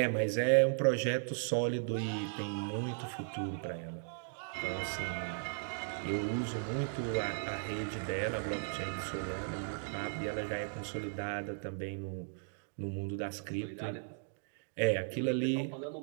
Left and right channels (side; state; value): left; silent; digital silence